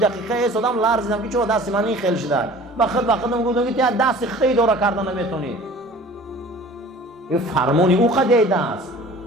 ایستادم لرزیدم که چرا دستی من این خیلی شده. بخدم گفتم که دستی خیلی داره کردن نمیتونی. این فرمانی او قضیه دست.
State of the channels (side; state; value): both; normal; correlation 0.45